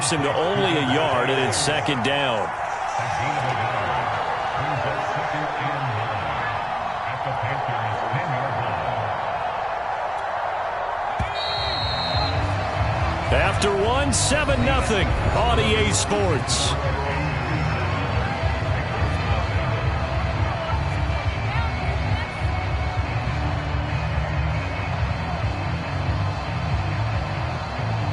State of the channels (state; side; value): identical; both; correlation 1.00